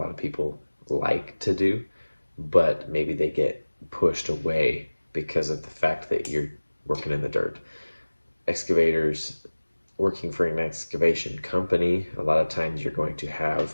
of people like to do, but maybe they get pushed away because of the fact that you're working in the dirt. Excavators, working for an excavation company, a lot of times you're going to have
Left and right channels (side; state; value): both; inverted; correlation -1.00